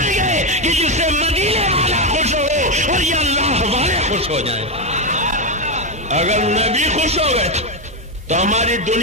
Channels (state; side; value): normal; both; correlation 0.08